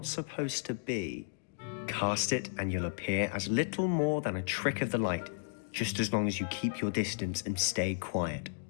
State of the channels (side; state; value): right; silent; digital silence